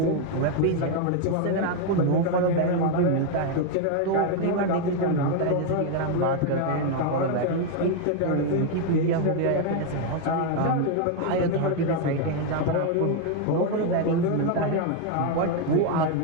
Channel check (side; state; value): both; different; correlation 0.01